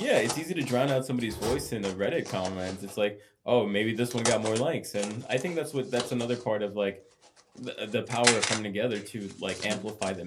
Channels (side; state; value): both; identical; correlation 1.00